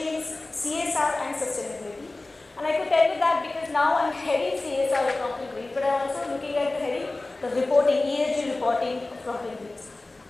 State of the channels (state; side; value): quieter; right; 3.0 dB